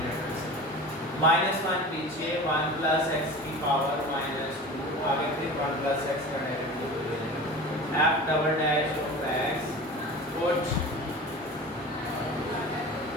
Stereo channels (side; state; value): both; normal; correlation 0.35